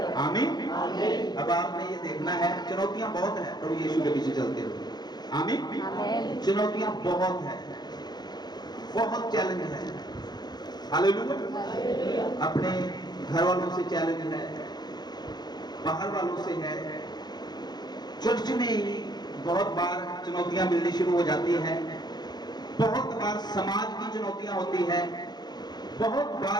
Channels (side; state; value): right; late; 0.20 ms